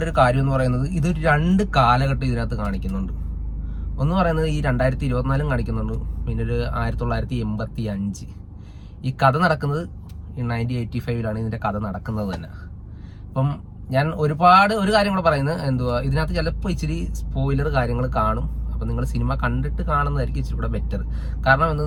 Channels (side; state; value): both; identical; correlation 1.00